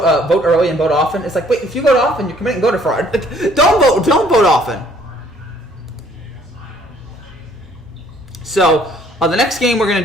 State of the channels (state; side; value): normal; both; correlation 0.61